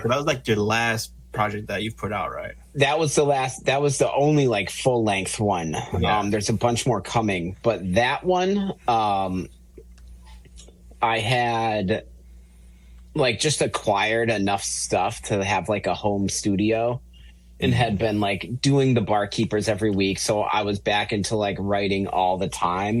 that was like your last project that you've put out, right? That was the last. That was the only like full length one. Yeah. There's a bunch more coming, but that one, I had. Like just acquired enough stuff to have like a home studio and had been like doing the Barkeepers every week. So I was back into like writing all the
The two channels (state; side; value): identical; both; correlation 1.00